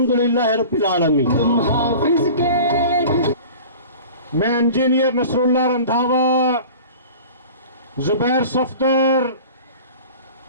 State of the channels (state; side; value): inverted; both; correlation -0.40